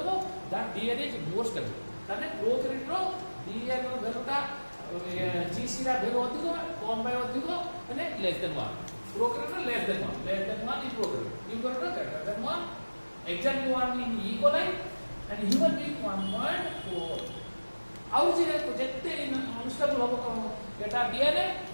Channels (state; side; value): inverted; both; correlation -1.00